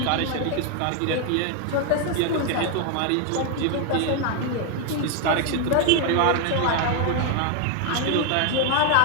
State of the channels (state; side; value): different; both; correlation 0.01